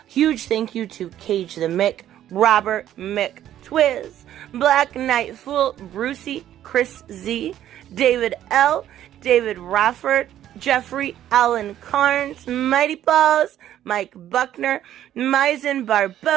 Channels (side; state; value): left; quieter; 11.8 dB